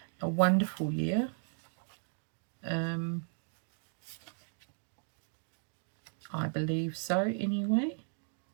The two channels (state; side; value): silent; left; digital silence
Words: a wonderful year. I believe so anyway.